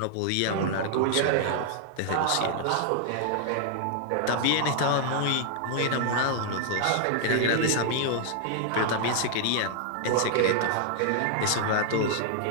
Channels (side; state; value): both; different; correlation 0.00